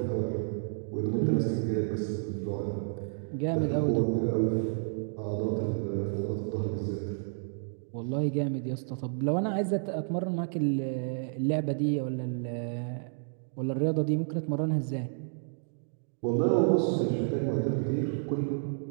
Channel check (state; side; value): silent; left; digital silence